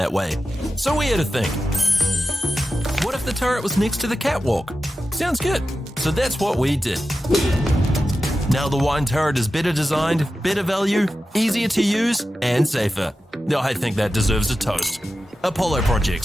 way. So we had to think. What if the turret was next to the catwalk? Sounds good. So that's what we did. Now the wine turret is better designed, better value, easier to use, and safer. Now I think that deserves a toast. Apollo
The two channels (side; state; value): both; normal; correlation 0.92